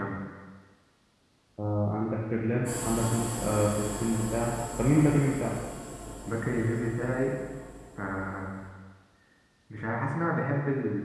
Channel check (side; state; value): both; identical; correlation 1.00